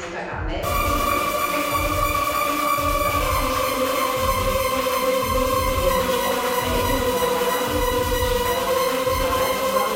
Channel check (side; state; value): both; identical; correlation 1.00